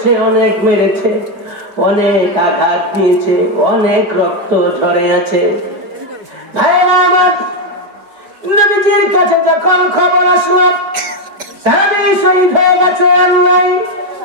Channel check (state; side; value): late; left; 5.1 ms